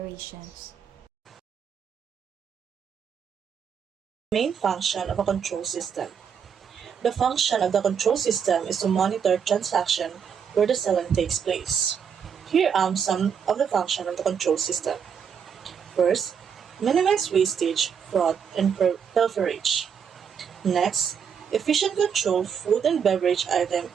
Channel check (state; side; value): quieter; left; 7.2 dB